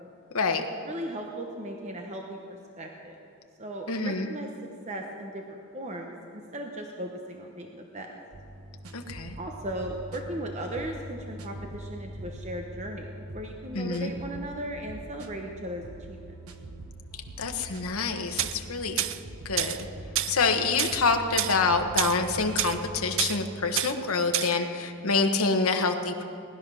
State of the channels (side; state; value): both; normal; correlation 0.01